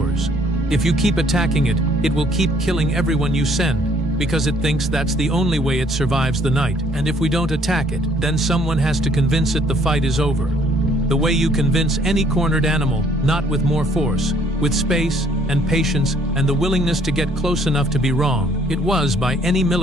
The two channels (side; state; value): both; normal; correlation 0.63